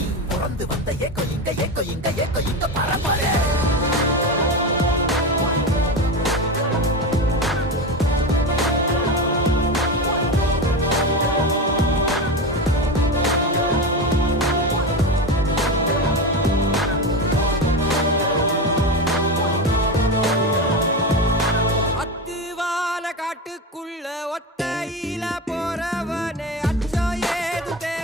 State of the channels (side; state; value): both; normal; correlation 0.20